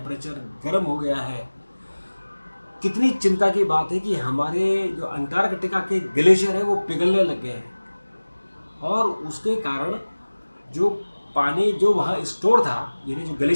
गर्म हो गया है। कितनी चिंता की बात है कि हमारे जो अंटार्कटिका के ग्लेशियर है वो पिघलने लग गए हैं। और उसके कारण जो पानी जो वहाँ स्टोर था, यानी जो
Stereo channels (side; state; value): both; inverted; correlation -1.00